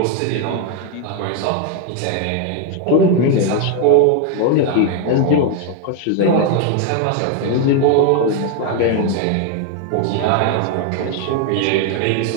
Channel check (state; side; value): different; both; correlation 0.01